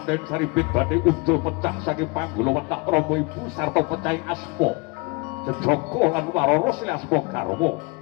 saribit badhe unjul pecah saking panggula wetak Rama Ibu sarta pecahing asma Jejaka lan Warana silih asma garwa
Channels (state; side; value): quieter; right; 27.9 dB